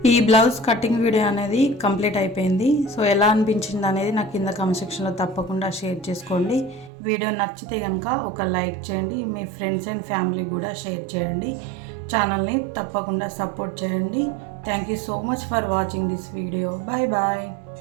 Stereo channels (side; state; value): left; drops out; at 6.9 s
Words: ఈ బ్లౌజ్ కటింగ్ వీడియో అనేది కంప్లీట్ అయిపోయింది. సో ఎలా అనిపించింది అనేది నాకు కింద కామెంట్ సెక్షన్లో తప్పకుండా షేర్ చేసుకోండి. వీడియో నచ్చితే కనుక ఒక లైక్ చేయండి, మీ ఫ్రెండ్స్ అండ్ ఫ్యామిలీకి కూడా షేర్ చేయండి. ఛానల్ని తప్పకుండా సపోర్ట్ చేయండి. Thank you so much for watching this video. Bye bye.